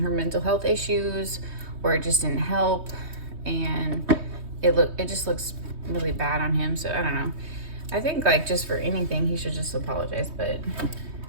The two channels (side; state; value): left; late; 3.2 ms